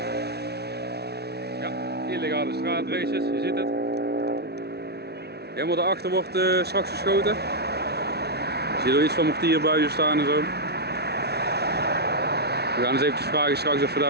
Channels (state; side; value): late; left; 0.48 ms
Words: Ja, illegale straatraces, je ziet het. Helemaal daarachter wordt straks geschoten. Je ziet er iets van mortierbuizen staan en zo. We gaan eens eventjes vragen straks of we